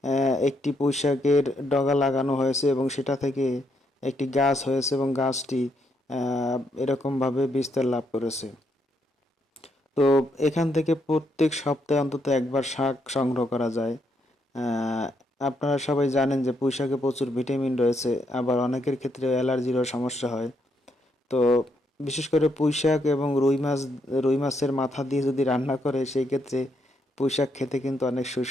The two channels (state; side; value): normal; both; correlation 0.76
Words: একটি পুঁইশাকের ডগা লাগানো হয়েছে এবং সেটা থেকে একটি গাছ হয়েছে এবং গাছটি এরকমভাবে বিস্তার লাভ করেছে। তো এখান থেকে প্রত্যেক সপ্তাহে অন্তত একবার শাক সংগ্রহ করা যায়। আহ, আপনারা সবাই জানেন যে পুঁইশাকে প্রচুর ভিটামিন রয়েছে, আবার অনেকের ক্ষেত্রে অ্যালার্জিরও সমস্যা হয়। তো বিশেষ করে পুঁইশাক এবং রুই মাছের মাথা দিয়ে যদি রান্না করে সেই ক্ষেত্রে পুঁইশাক খেতে কিন্তু অনেক